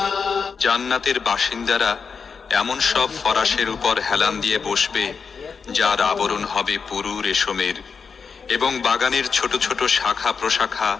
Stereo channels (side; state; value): right; quieter; 5.7 dB